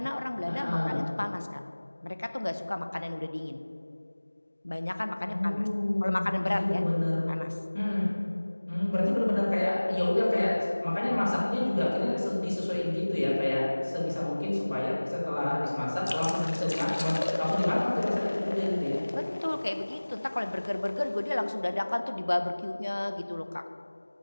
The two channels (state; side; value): inverted; both; correlation -1.00